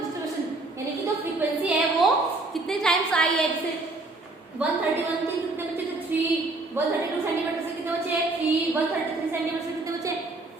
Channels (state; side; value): quieter; left; 3.1 dB